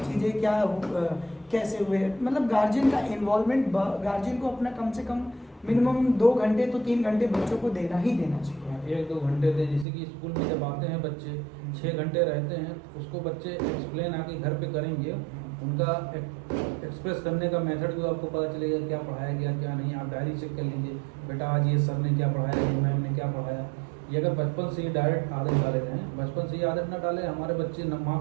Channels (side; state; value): left; drops out; at 9.9 s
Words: क्या कैसे हुए। मतलब गार्जियन का इन्वॉल्वमेंट, गार्जियन को अपना कम से कम मिनिमम 2 घंटे तो 3 घंटे बच्चों को देना ही देना चाहिए। 1-2 घंटे दें। जैसे कि स्कूल में जब आते हैं बच्चे 6 घंटे रहते हैं, उसको बच्चे एक्सप्लेन आके घर पे करेंगे। उनका एक्सप्रेस करने का मेथड भी आपको पता चलेगा, क्या पढ़ाया गया क्या नहीं। आप डायरी चेक कर लीजिए, बेटा आज ये सर ने क्या पढ़ाया, ये मैम ने क्या पढ़ाया। ये अगर बचपन से ही डायरेक्ट आदत डाले हैं, बचपन से ही आदत ना डालें, हमारे बच्चे